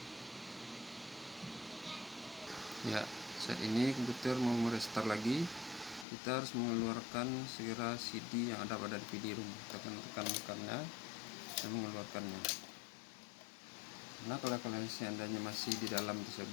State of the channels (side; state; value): right; drops out; at 6.1 s